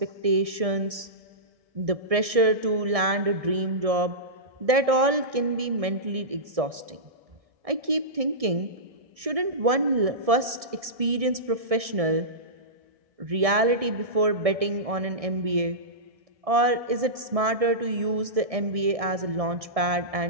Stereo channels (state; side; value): late; left; 1.6 ms